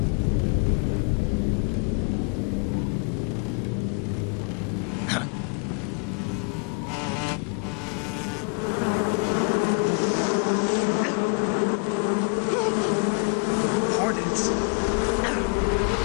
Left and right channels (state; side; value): quieter; right; 36.6 dB